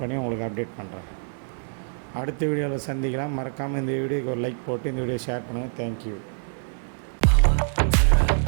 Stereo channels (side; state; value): left; silent; 61 dB below the other